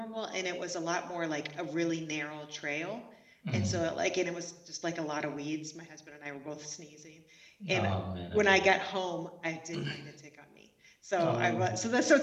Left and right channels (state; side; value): identical; both; correlation 1.00